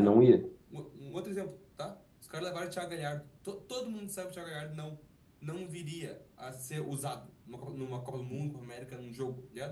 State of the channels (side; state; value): both; identical; correlation 1.00